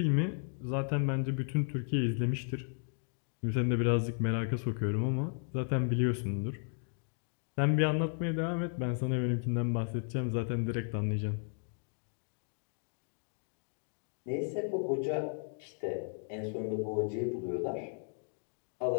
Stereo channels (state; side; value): silent; right; 55 dB below the other